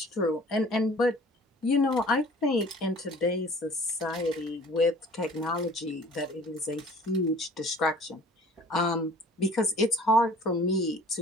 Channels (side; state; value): both; normal; correlation 0.49